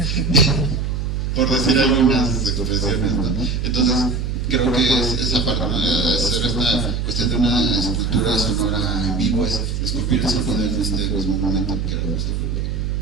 por decir algunas expresiones, ¿no? Entonces, creo que es esa parte, ¿no? Hacer esta cuestión de una escultura sonora en vivo, es esculpir el sonido en este mismo momento, que era nuestro problema.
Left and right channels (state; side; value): noise; right; hum, 1 dB below the sound